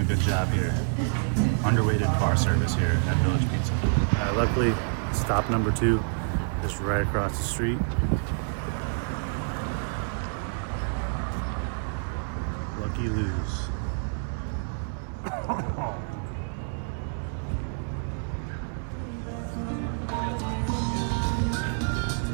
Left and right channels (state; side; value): silent; left; 60 dB below the other